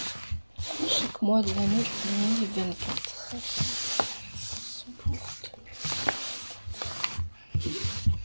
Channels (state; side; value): inverted; both; correlation -1.00